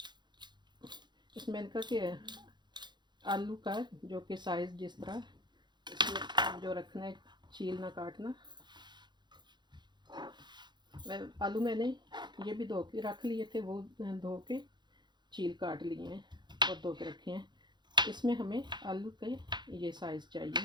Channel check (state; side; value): late; left; 0.21 ms